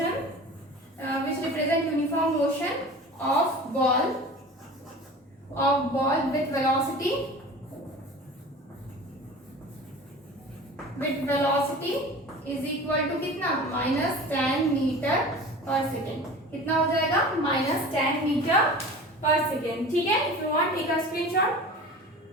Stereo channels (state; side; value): normal; both; correlation 0.38